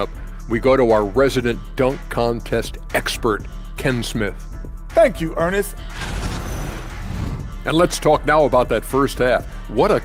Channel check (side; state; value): both; identical; correlation 1.00